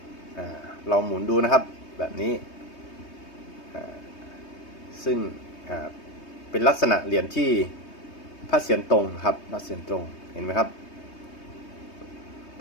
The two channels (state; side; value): late; right; 3.2 ms